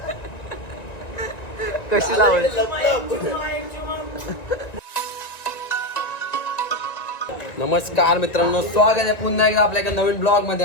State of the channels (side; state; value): right; late; 1.9 ms